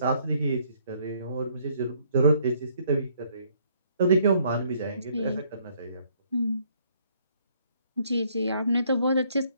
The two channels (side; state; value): both; inverted; correlation -0.66